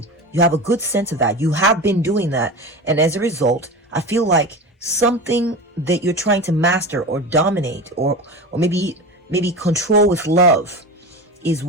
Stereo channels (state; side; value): normal; both; correlation 0.28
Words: You have a good sense of that. You have been doing that. And as a result, I feel like something that you're trying to master or dominate or maybe control with love is